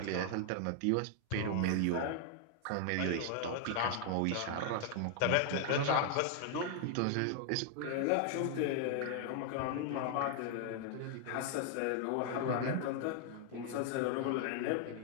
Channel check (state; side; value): different; both; correlation 0.00